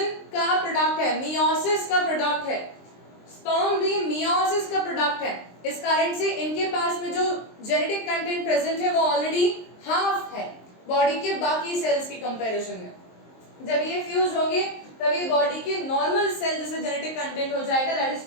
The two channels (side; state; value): right; late; 23 ms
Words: का प्रोडक्ट है, मियोसिस का प्रोडक्ट है, स्पर्म भी मियोसिस का प्रोडक्ट है। इस कारण से इनके पास में जो जेनेटिक कंटेंट प्रेजेंट है वो ऑलरेडी हाफ है बॉडी के बाकी सेल्स की कंपैरिजन में। जब ये फ्यूज होंगे तभी बॉडी के नॉर्मल सेल जैसे जेनेटिक कंटेंट हो जाएगा, दैट इज